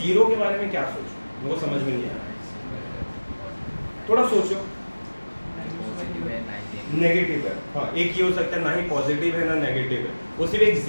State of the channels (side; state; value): both; inverted; correlation -1.00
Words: 0 के बारे में क्या सोचो? वो समझ में नहीं आ रहा है। थोड़ा सोचो। नेगेटिव है, हाँ, एक ये हो सकता है, ना ही पॉजिटिव है ना नेगेटिव है, वो सिर्फ एक